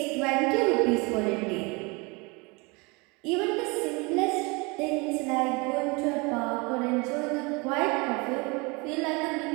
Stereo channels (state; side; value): quieter; left; 27.8 dB